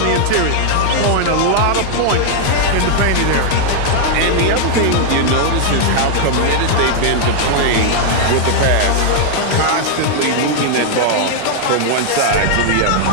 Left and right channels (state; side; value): different; both; correlation -0.01